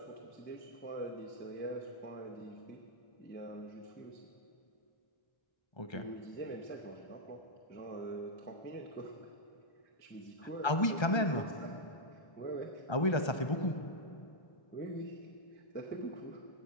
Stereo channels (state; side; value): late; right; 1.3 ms